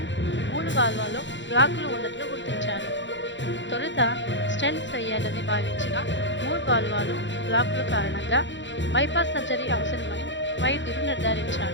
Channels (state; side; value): late; right; 0.54 ms